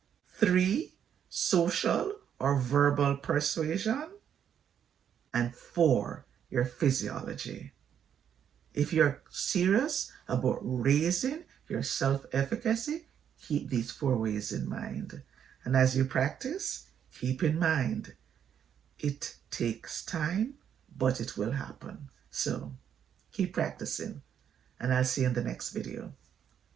3, social or verbal persuasion. And 4, your physiology. If you're serious about raising your self-efficacy, keep these 4 ways in mind. And as you practice, keep in mind, it takes time, but it will happen. So keep practicing, and I'll see you in the next video.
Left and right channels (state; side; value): quieter; left; 8.7 dB